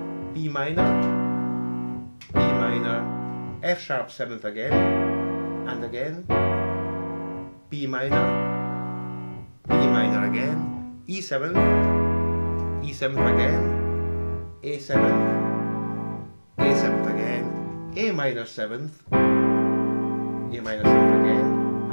B minor, F sharp 7th again, and again B minor again, E7th, E7th again, A7th, A7th again, A minor 7th, A minor 7th again,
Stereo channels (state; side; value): inverted; both; correlation -1.00